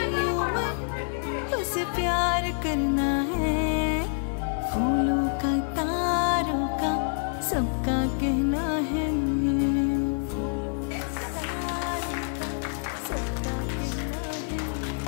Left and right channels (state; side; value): silent; right; 60 dB below the other